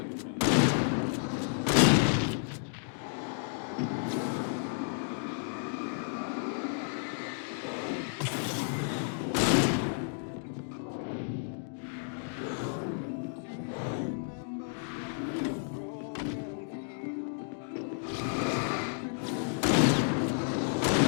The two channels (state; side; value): silent; right; digital silence